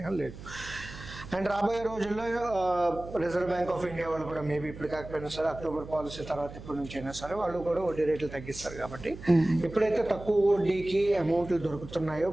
లేదు. అండ్ రాబోయే రోజుల్లో రిజర్వ్ బ్యాంక్ ఆఫ్ ఇండియా వాళ్ళు కూడా మేబీ ఇప్పుడు కాకపోయినా సరే అక్టోబర్ పాలసీ తర్వాత ఎప్పటి నుంచి అయినా సరే వాళ్ళు కూడా వడ్డీ రేట్లు తగ్గిస్తారు. కాబట్టి ఎప్పుడైతే తక్కువ వడ్డీకి అమౌంట్లు దొరుకుతున్నాయో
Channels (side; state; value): right; noise; hum, 14 dB below the sound